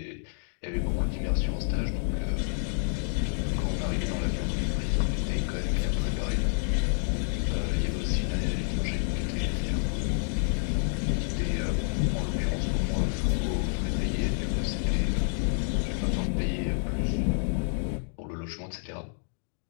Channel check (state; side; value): silent; right; 57 dB below the other